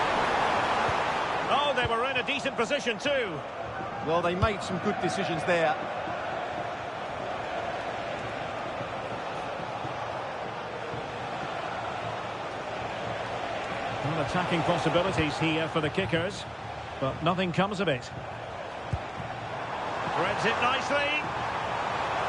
Oh, they were in a decent position too. Well, they made some good decisions there. Well, attacking possibilities here for the kickers, but nothing comes of it. Threads it nicely.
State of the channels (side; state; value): both; identical; correlation 1.00